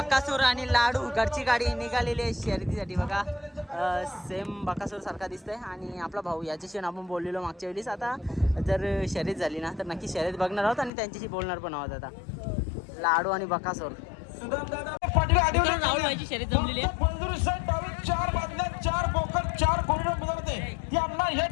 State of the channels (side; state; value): right; drops out; at 10.9 s